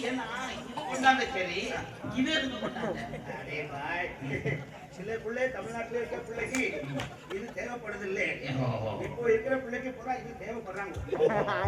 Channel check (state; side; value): identical; both; correlation 1.00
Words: என்ன இது கொண்டாந்த சரி, இது எதுக்கு கொண்டாந்த? அரே பாய் சில பிள்ளை தமிழ்நாட்டில் இருக்க பிள்ளைக்கு இது தேவைப்படுது இல்லை இப்போ இருக்கிற பிள்ளைக்கு பூரா இது தேவைப்படுறாங்க